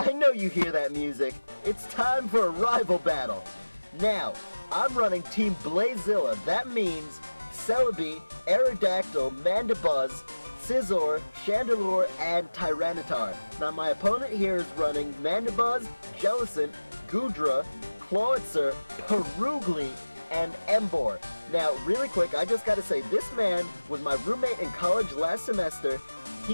know you hear that music. It's time for a rival battle. Now, I'm running Team Blazilla. That means Celebi, Aerodactyl, Mandibuzz, Scizor, Chandelure, and Tyranitar. Now, my opponent here is running Mandibuzz, Jellicent, Goodra, Clawitzer, Perugly, and Emboar. Now, really quick, I just gotta say, this man was my roommate in college last semester.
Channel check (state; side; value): inverted; both; correlation -1.00